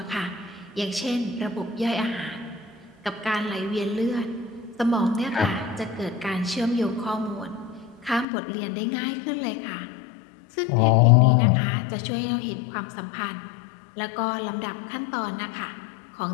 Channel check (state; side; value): drops out; right; at 8.2 s